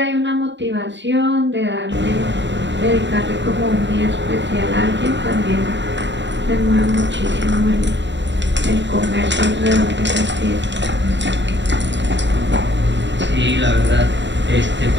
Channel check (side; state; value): left; late; 0.52 ms